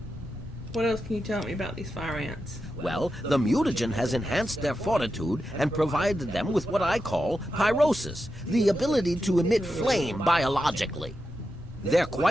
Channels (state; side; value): normal; both; correlation 0.88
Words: What else can you tell me about these fire ants? Well, the mutagen has enhanced their fortitude and provided them with what I call pyrosis, the ability to emit flame biologically. They're